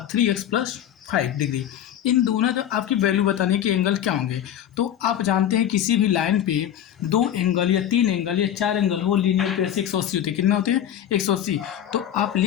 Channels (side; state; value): right; quieter; 10.5 dB